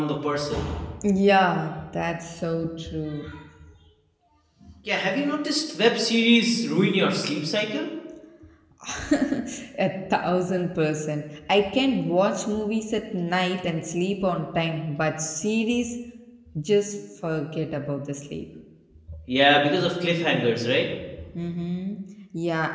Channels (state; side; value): identical; both; correlation 1.00